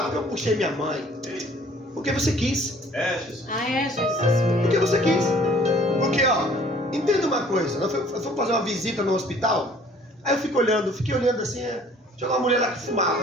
porque eu puxei minha mãe. Porque você quis. Jesus. Porque você quis. Porque, ó, entenda uma coisa. Nós fomos fazer uma visita no hospital. Aí eu fiquei olhando assim. Tinha uma mulher lá que fumava.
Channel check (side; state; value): both; normal; correlation 0.55